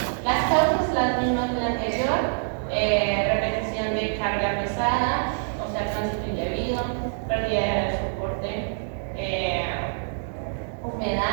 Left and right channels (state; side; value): silent; left; digital silence